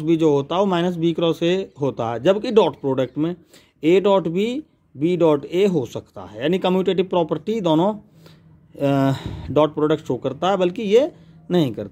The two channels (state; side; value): identical; both; correlation 1.00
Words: बी जो होता है वो माइनस बी क्रॉस ए होता है, जबकि डॉट प्रोडक्ट में A dot B dot A हो सकता है, यानी कम्यूटेटिव प्रॉपर्टी दोनों डॉट प्रोडक्ट शो करता है, बल्कि ये नहीं